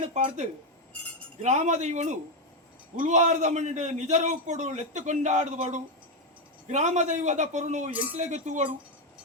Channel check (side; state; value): both; normal; correlation 0.06